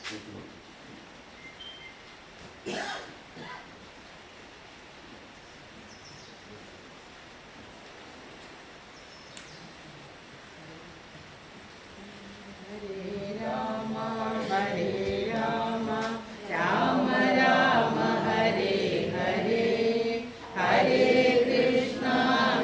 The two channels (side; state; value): both; identical; correlation 1.00